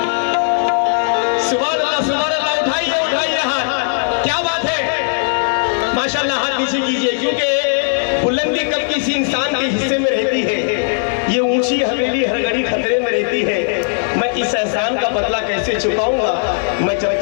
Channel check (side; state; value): right; silent; digital silence